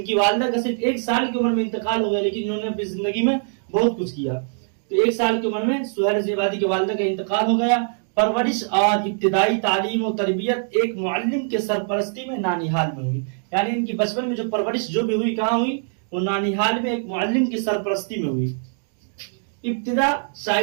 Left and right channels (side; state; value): left; silent; 64 dB below the other